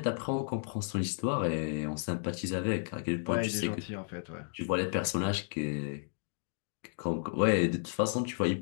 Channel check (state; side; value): silent; right; digital silence